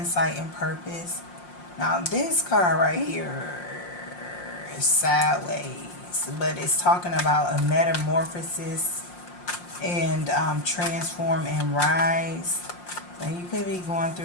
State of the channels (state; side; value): late; right; 5.6 ms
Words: and purpose. Now this card right here is sideways, but it's talking about a metamorphosis and transform and rise. And you could be going